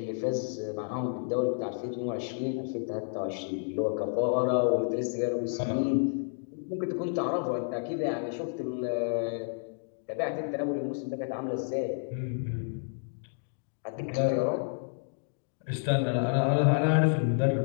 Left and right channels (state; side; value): silent; right; digital silence